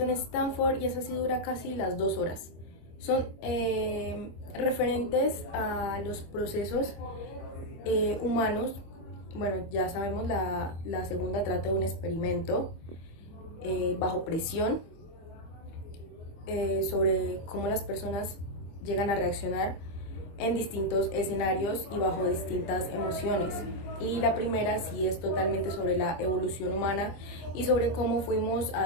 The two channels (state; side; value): late; right; 25 ms